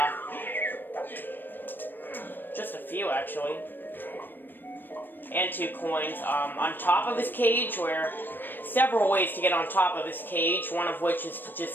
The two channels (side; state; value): right; late; 0.093 ms